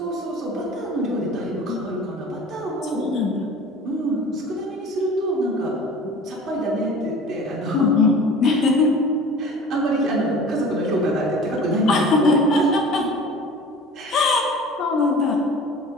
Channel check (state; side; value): normal; both; correlation 0.42